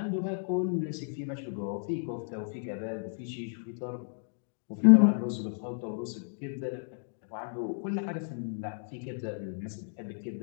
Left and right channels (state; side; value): silent; right; digital silence